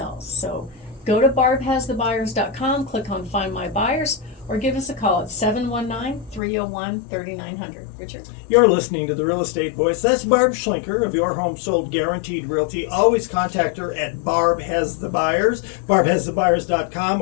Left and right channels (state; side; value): drops out; right; at 6.4 s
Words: So go to barbhasthebuyers.com, click on Find My Buyers, or give us a call at 719-301-3900. Richard? You're listening to The Real Estate Voice. That's Barb Schlinker of Your Home Sold Guaranteed Realty. Always contact her at Barb Has the Buyers, barbhasthebuyers.com,